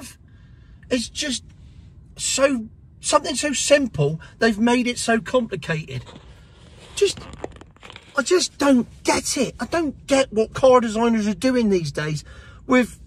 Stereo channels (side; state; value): both; identical; correlation 1.00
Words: It's just something so simple, they've made it so complicated. I just don't get it. I don't get what car designers are doing these days with